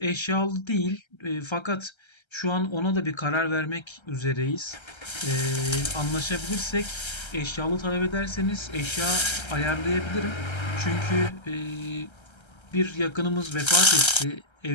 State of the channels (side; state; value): right; late; 1.3 ms